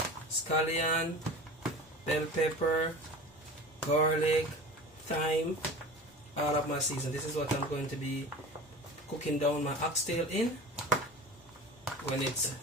scallion, bell pepper, garlic, thyme, all of my seasoning. This is what I'm going to be cooking down my oxtail in when it's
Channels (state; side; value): normal; both; correlation 0.36